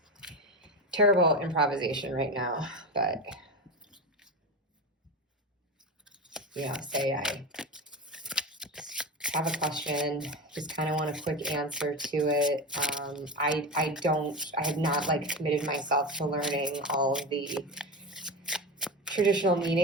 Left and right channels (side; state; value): both; normal; correlation 0.22